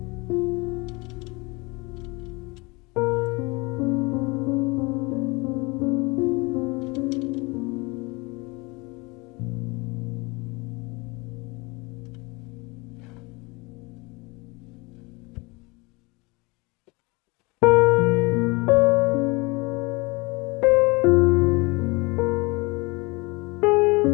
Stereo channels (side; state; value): right; quieter; 26.1 dB